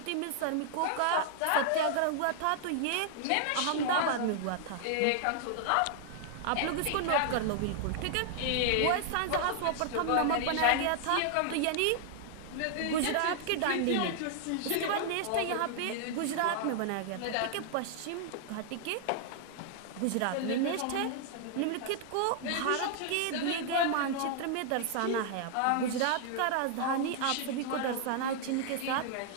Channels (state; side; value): different; both; correlation -0.01